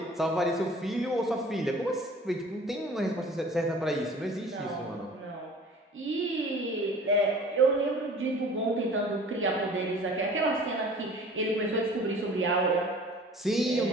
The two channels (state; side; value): normal; both; correlation 0.47